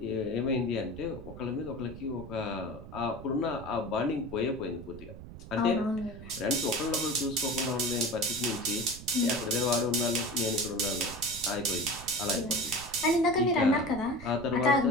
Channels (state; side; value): noise; right; rumble, 14 dB below the sound